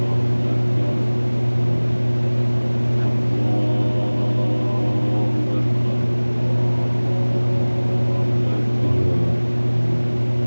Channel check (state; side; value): inverted; both; correlation -1.00